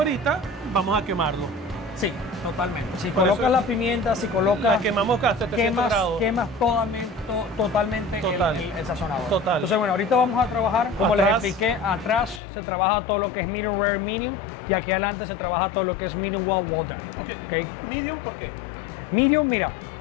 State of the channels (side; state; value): right; drops out; at 12.4 s